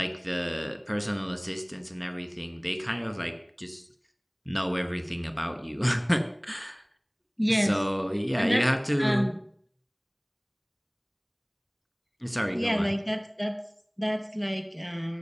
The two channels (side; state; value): both; identical; correlation 1.00